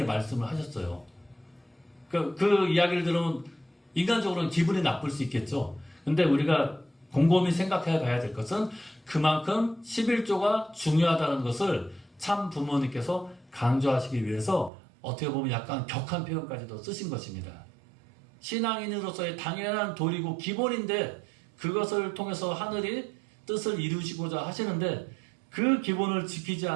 말씀을 하셨어요. 그 이야기를 들으면 인간적으로는 기분이 나쁠 수 있겠죠. 근데 우리가 곰곰이 생각해 봐야 될 것은 그만큼 11조가 중요하다는 것을 참 부모님께서 강조하시기 위해서 어떻게 보면 약간 격한 표현까지도 쓰신 것입니다. 신앙인으로서의 당연한 도리고 기본인데 그것을 통해서 하늘이 뜻을 이루시고자 하시는데 그 기본을 지키지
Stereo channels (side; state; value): left; drops out; at 14.7 s